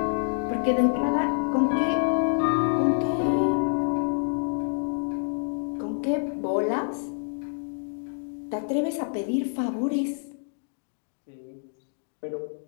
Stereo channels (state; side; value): silent; right; digital silence